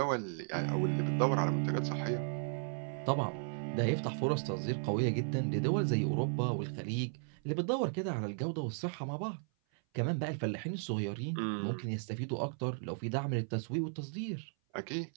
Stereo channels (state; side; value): silent; left; 54 dB below the other